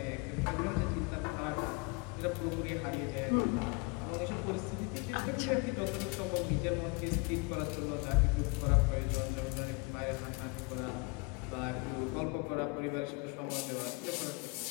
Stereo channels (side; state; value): right; quieter; 29.5 dB